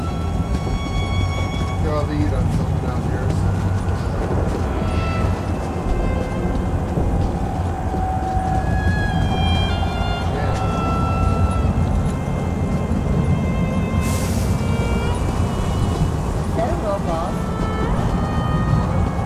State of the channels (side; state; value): both; identical; correlation 1.00